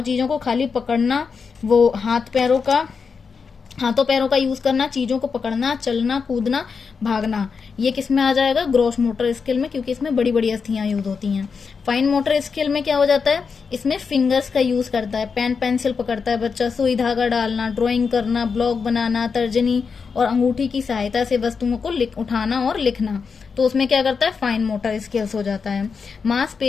चीजों को खाली पकड़ना, वो हाथों पैरों का यूज करना, चीजों को पकड़ना, चलना, कूदना, भागना, ये किस में आ जाएगा? ग्रॉस मोटर स्किल में, क्योंकि इसमें बड़ी बड़ी अस्थियां यूज होती हैं। फाइन मोटर स्किल में क्या हो जाता है? इसमें फिंगर्स का यूज करता है, पेन पेंसिल पकड़ता है बच्चा, सुई धागा डालना, ड्राइंग करना, ब्लॉक बनाना, तर्जनी और अंगूठी की सहायता से वस्तुओं को उठाना और लिखना, तो उसमें क्या करता है? फाइन मोटर स्किल्स हो जाता है।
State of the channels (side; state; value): right; quieter; 5.5 dB